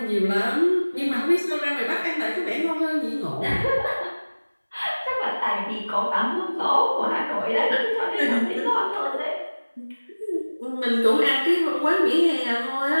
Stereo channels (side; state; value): both; inverted; correlation -1.00